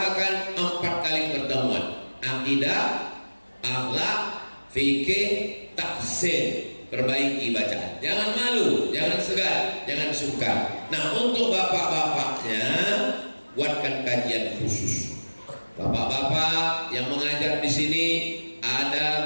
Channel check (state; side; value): inverted; both; correlation -1.00